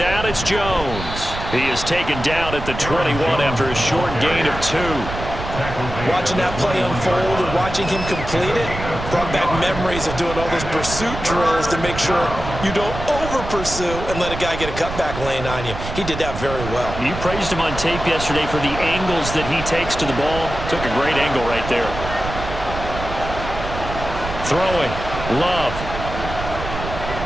it's Jones. He is taken down at the 21 after a short gain of 2. Watching that play unfold and watching him complete it brought back memories of doing all those pursuit drills to make sure you don't over-pursue and let a guy get a cutback lane on you. He did that very well. You praised him on tape yesterday for the angles that he takes to the ball. Took a great angle right there. Throwing. Love.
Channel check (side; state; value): right; noise; rumble, 8 dB below the sound